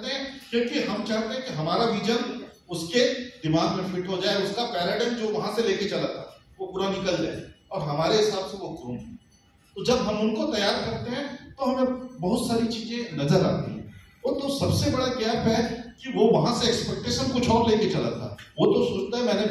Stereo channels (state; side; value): identical; both; correlation 1.00